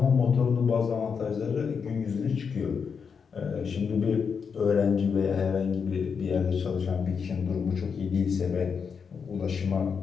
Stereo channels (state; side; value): quieter; right; 6.1 dB